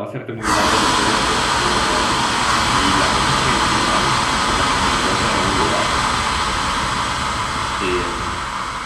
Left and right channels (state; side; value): identical; both; correlation 1.00